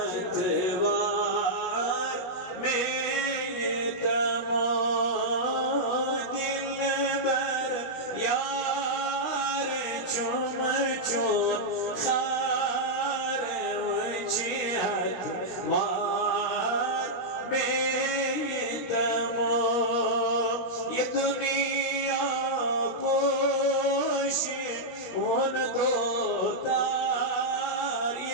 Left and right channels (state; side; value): late; right; 17 ms